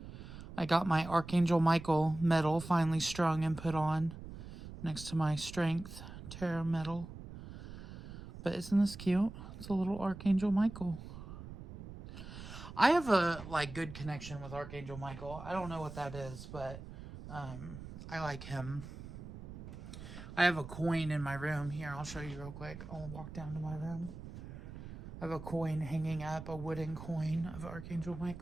I got my Archangel Michael medal finally strung and put on next to my Strength Tarot medal. But isn't this cute? It's a little Archangel Michael. I have a good connection with Archangel Michael. I don't know what that is, but I like him. I have a coin in my room. Here, I'll show you real quick. I'll walk down to my room. I have a coin hanging up, a wooden coin of Archangel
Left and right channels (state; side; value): noise; right; rumble, 12 dB below the sound